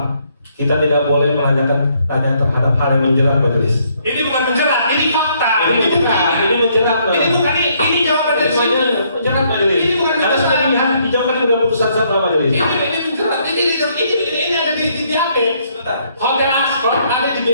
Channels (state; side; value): inverted; both; correlation -0.69